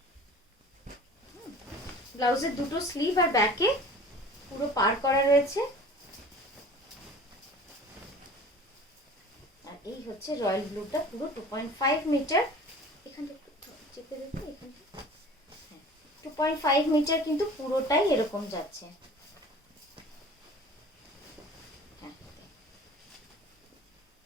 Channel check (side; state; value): both; normal; correlation 0.43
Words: ব্লাউজের দুটো স্লিভ আর ব্যাকে পুরো পার করা রয়েছে। আর এই হচ্ছে রয়্যাল ব্লুটা, পুরো 2.5 মিটার, এখানটা চেপে দেখো, এখানটা 2.5 মিটার কিন্তু পুরোটাই এরকম যাচ্ছে। হ্যাঁ